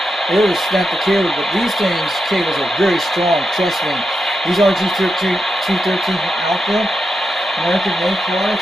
It would have snapped the cable, but these cables are very strong, trust me. These RG-213 Alpha, American-made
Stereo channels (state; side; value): normal; both; correlation 0.87